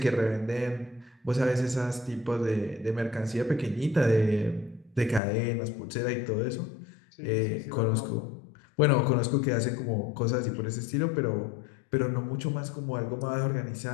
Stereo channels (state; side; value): drops out; right; at 5.2 s